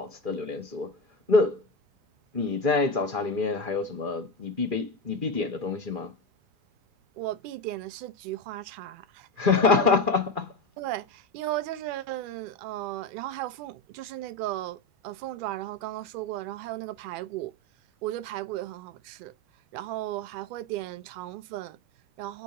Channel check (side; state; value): left; late; 2.4 ms